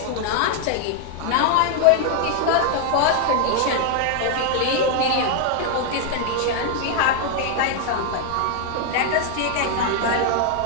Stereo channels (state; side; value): different; both; correlation 0.00